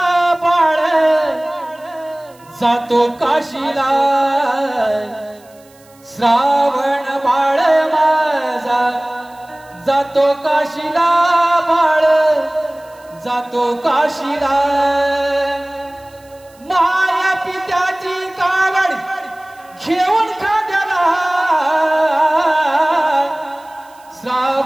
बाळ जातो काशीला श्रावण बाळ माझा जातो काशीला बाळ जातो काशीला माया पित्याची कावड घेऊन खांद्याला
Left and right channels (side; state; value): right; noise; hiss, 29 dB below the sound